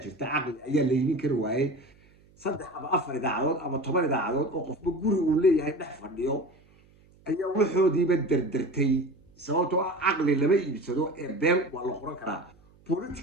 jirta caqli ayaa la iibin kari waayey 3 ama 4 idaacadood ama 10 idaacadood oo qofba guri uu leeyahay dhex fadhiyo ayaa waxoodiiba dardartay sababtoo ah caqli lama iibsado ee been waa la qoran karaa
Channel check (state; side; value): noise; right; hum, 29 dB below the sound